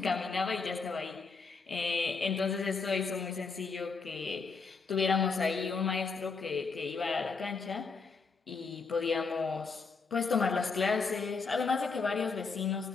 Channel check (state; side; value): quieter; right; 4.7 dB